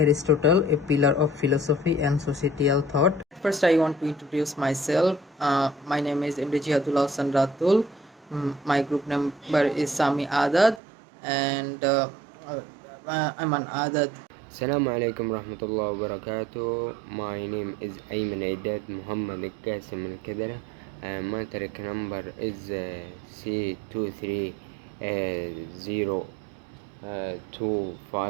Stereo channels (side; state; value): left; drops out; at 10.8 s